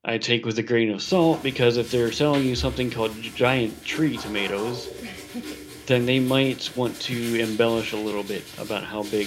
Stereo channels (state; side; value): identical; both; correlation 1.00